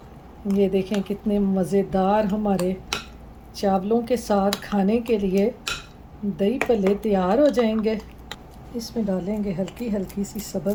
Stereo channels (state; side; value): identical; both; correlation 1.00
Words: ये देखें कितने मज़ेदार हमारे चावलों के साथ खाने के लिए दही पल्ले तैयार हो जाएंगे। इसमें डालेंगे हल्की हल्की सी